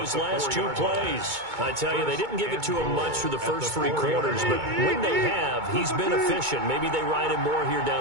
last 2 plays. I tell you, they didn't give it to him much through the first 3 quarters, but when they have, he's been efficient. Maybe they ride him more here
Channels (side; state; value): left; late; 2.2 ms